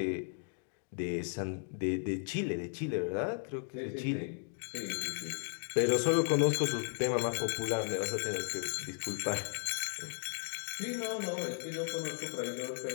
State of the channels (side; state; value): right; silent; digital silence